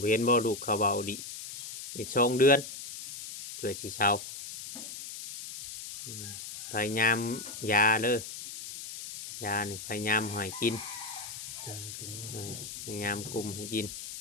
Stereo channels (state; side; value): noise; left; hiss, 9 dB below the sound